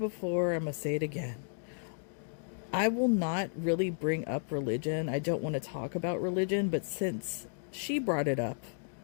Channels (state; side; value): silent; right; digital silence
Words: I'm going to say it again. I will not really bring up religion. I don't want to talk about religion, but since she brought it up,